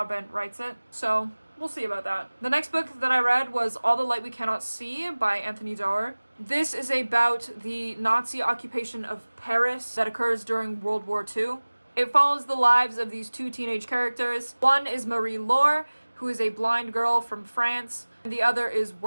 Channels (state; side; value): inverted; both; correlation -1.00